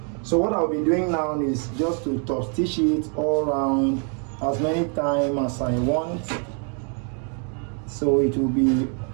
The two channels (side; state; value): left; quieter; 39.1 dB